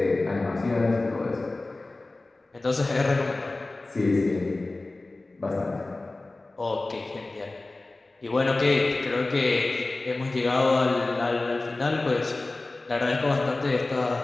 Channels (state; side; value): quieter; right; 3.1 dB